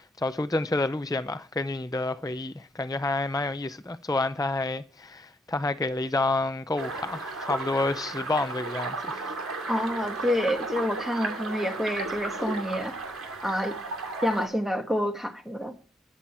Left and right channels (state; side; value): normal; both; correlation 0.73